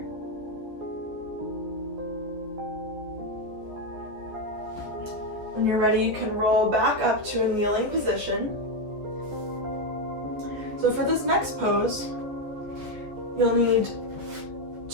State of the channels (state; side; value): late; left; 14 ms